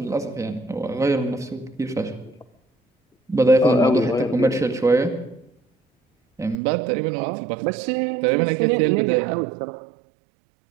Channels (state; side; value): drops out; left; at 6.6 s